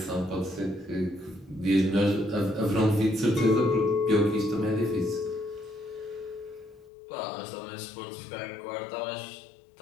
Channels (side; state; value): right; drops out; at 6.9 s